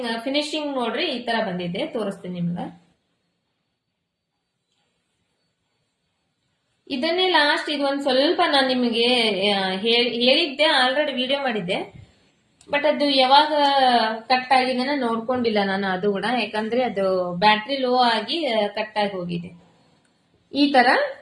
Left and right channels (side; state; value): both; identical; correlation 1.00